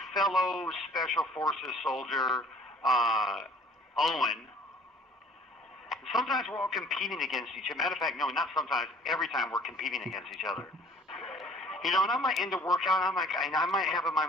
fellow Special Forces soldier, Owen. Sometimes we're all competing against each other. Matter of fact, no, not sometimes. Every time we're competing against each other. And I might end a workout, and I might have in my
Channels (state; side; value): normal; both; correlation 0.53